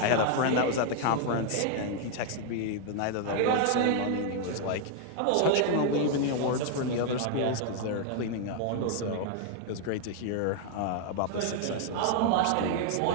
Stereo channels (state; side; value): different; both; correlation 0.00